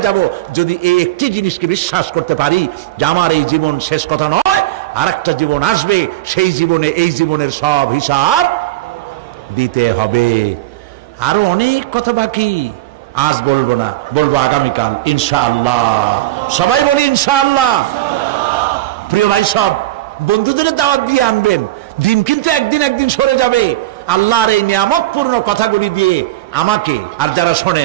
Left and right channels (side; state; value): left; quieter; 16.2 dB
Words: যাব যদি এই একটি জিনিসকে বিশ্বাস করতে পারি যে আমার এই জীবন শেষ কথা নয়, আর একটা জীবন আসবে, সেই জীবনে এই জীবনের সব হিসাব দিতে হবে। আরো অনেক কথা বাকি, আজ বলবো না, বলবো আগামীকাল ইনশাআল্লাহ। সবাই বলি ইনশাআল্লাহ। প্রিয় ভাই, সব বন্ধুদের দাওয়াত দিয়ে আনবেন। দিন কিন্তু একদিন সরে যাবে। আল্লাহর এই নিয়ামতপূর্ণ কথাগুলি দিয়ে আমাকে আর যারা